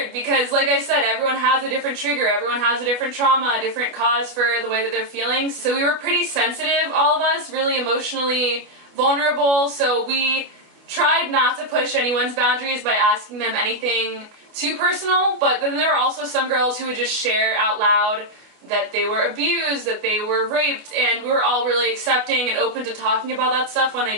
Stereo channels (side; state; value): left; late; 28 ms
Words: because, like I said, everyone has a different trigger, everyone has a different trauma, a different cause for the way that they're feeling. So we were pretty sensitive, all of us, really emotionally vulnerable, so we tried not to push anyone's boundaries by asking them anything too personal, but then there were also some girls who would just share out loud that they were abused, that they were raped, and we were all really accepting and open to talking about that stuff when they